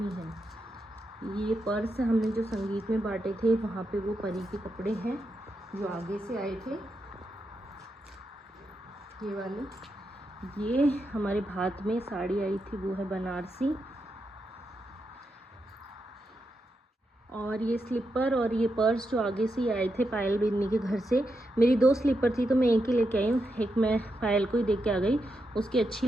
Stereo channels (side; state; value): both; normal; correlation 0.85